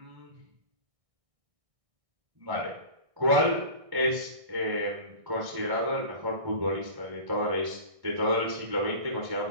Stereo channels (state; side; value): late; left; 1.6 ms